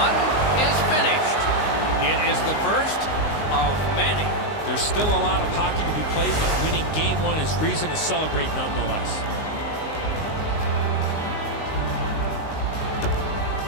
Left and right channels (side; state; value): right; late; 19 ms